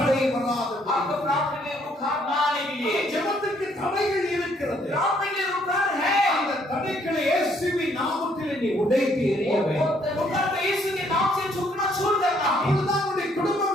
வராது. आपको प्रार्थना में रुकावट ना आने के लिए ஜெபத்திற்கு தடைகள் இருக்கிறது. प्रार्थना के लिए रुकावट है। அந்த தடைகளை இயேசுவின் நாமத்தில் நீ உடைத்து எறிய வேண்டும். रुकावट को यीशु के नाम से झुकना छोड़ देना है। அப்பொழுதுதான் உன்னுடைய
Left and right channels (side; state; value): both; normal; correlation 0.67